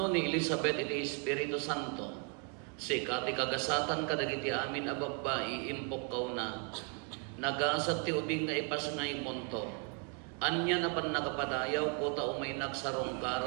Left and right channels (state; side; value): quieter; left; 38.7 dB